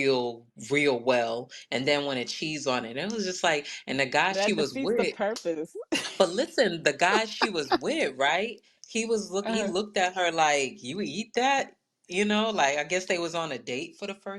well and then wanted cheese on it. And it was just like, and the guy she That was defeats the with, purpose. but listen, the guy she was with, right? He uh, looked at her like, "You eat that?" Like I guess they was on a date for the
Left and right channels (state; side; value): identical; both; correlation 1.00